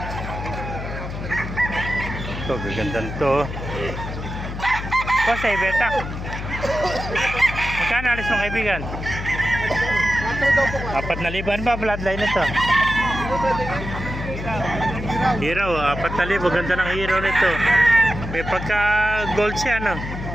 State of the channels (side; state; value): left; noise; hum, 7 dB below the sound